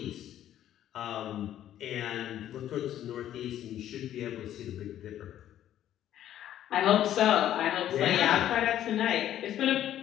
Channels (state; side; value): quieter; right; 11.7 dB